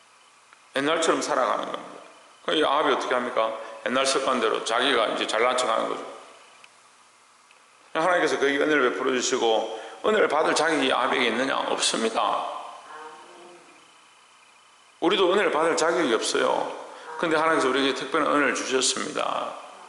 옛날처럼 살아가는 겁니다. 이 아합이 어떻게 합니까? 옛날 습관대로 자기가 이제 잘난 척 하는 거죠. 하나님께서 그에게 은혜를 베풀어 주시고 은혜를 받을 자격이 아합에게 있느냐? 없습니다. 우리도 은혜를 받을 자격이 없어요. 근데 하나님께서 우리에게 특별한 은혜를 주셨습니다.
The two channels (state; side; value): identical; both; correlation 1.00